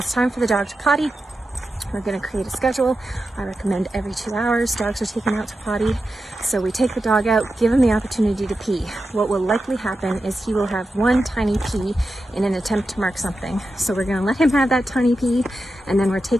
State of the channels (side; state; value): both; normal; correlation 0.90